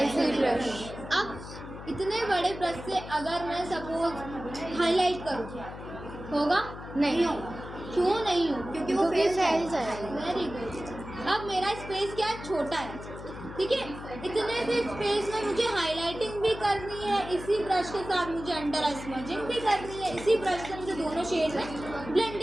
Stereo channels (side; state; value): left; noise; hum, 12 dB below the sound